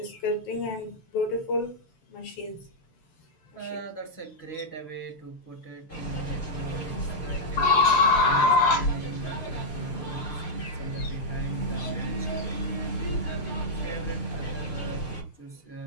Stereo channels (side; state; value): right; late; 6.7 ms